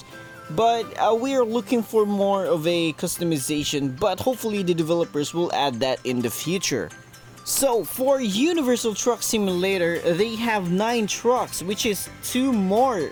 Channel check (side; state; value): both; identical; correlation 1.00